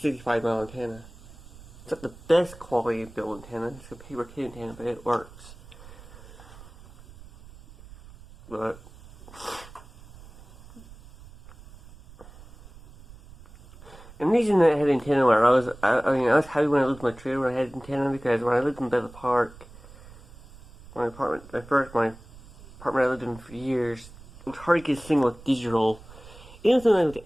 mile antenna. It's not the best quality built antenna. It's a paper kit antenna, but it works. But and the reason that I had antenna where I was happy when I lived in my trailer when I had antenna, because when I lived in Bethel Park, my apartment I lived in for years, it was hard to get a signal with digital. Even something with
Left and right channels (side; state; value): right; noise; rumble, 20 dB below the sound